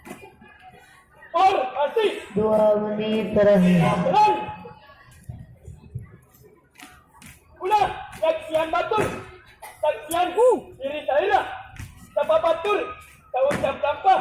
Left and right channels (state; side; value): identical; both; correlation 1.00